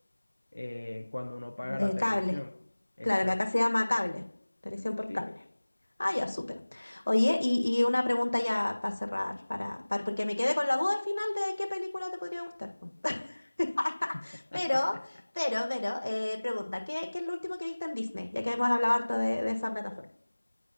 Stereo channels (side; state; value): both; inverted; correlation -1.00